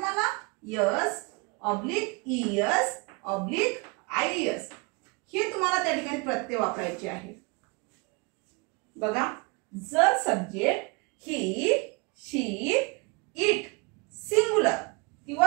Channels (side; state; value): left; quieter; 28.8 dB